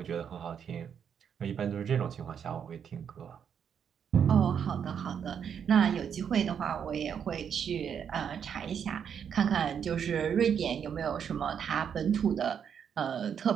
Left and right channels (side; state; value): left; quieter; 7.8 dB